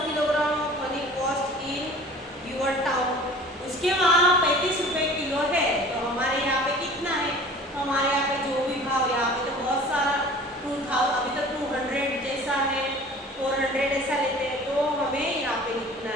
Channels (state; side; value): normal; both; correlation 0.44